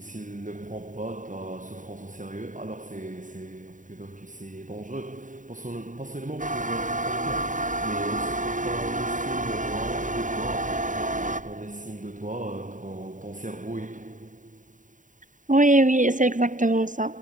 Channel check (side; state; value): left; late; 0.37 ms